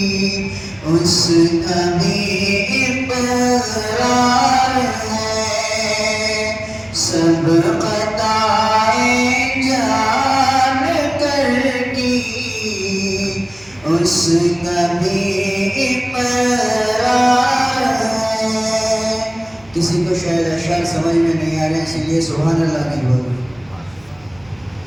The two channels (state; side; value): noise; right; hum, 27 dB below the sound